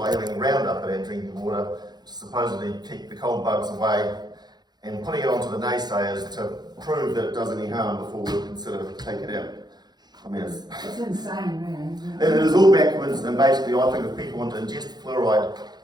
having Roundup in our drinking water to supposedly keep the cold bugs away, and putting it onto the naysayers to prove that it does any harm before we'll consider taking it out. I mean, It's insane, really, isn't it? it is all backwards, and basically I think if people want to ingest fluoride,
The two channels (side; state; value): left; late; 0.20 ms